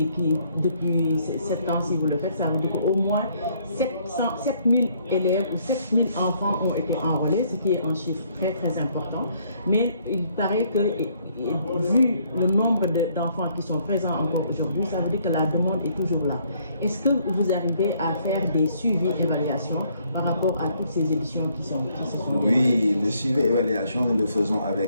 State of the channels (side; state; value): both; inverted; correlation -0.67